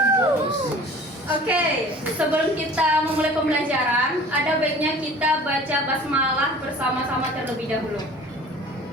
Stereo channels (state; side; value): normal; both; correlation 0.45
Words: Oke, sebelum kita memulai pembelajaran, ada baiknya kita baca basmalah bersama-sama terlebih dahulu.